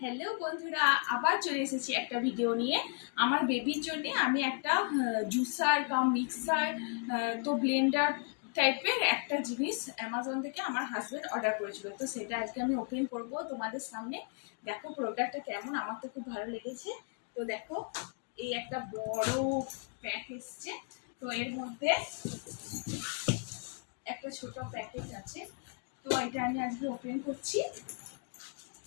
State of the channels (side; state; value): right; quieter; 38.4 dB